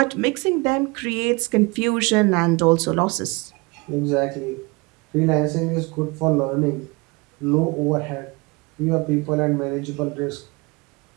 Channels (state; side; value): quieter; left; 26.6 dB